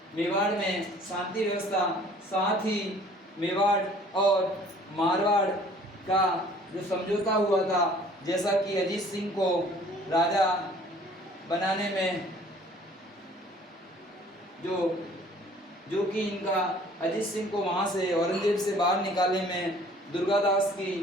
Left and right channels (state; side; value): normal; both; correlation 0.53